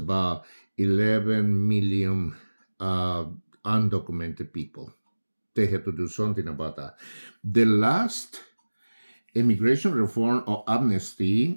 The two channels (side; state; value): both; inverted; correlation -1.00